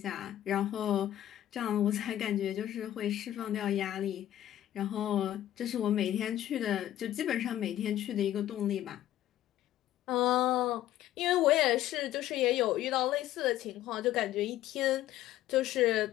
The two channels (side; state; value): right; quieter; 13.0 dB